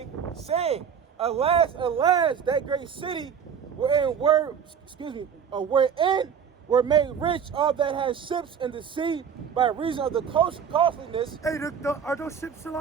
saying, Alas, alas, that great city wherein were made rich all that has ships in the sea by reason of the costliness. Hey, are those ships still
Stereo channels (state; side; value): quieter; left; 7.4 dB